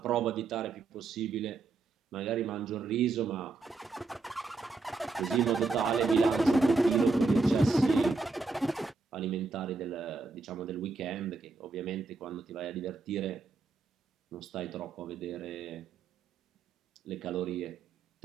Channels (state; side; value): quieter; left; 4.0 dB